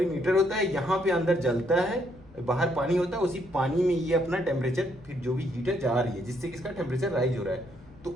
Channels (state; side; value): noise; left; rumble, 23 dB below the sound